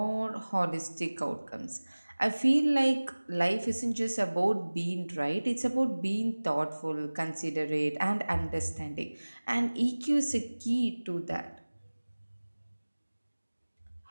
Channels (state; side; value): inverted; both; correlation -1.00